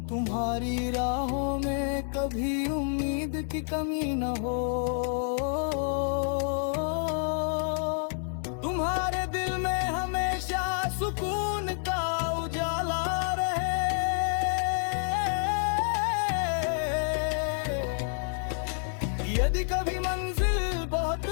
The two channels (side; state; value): right; silent; 56 dB below the other